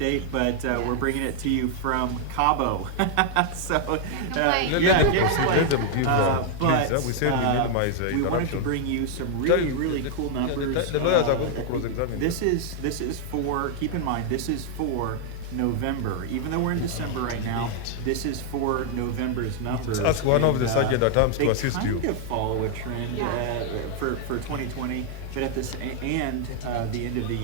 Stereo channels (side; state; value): both; different; correlation 0.00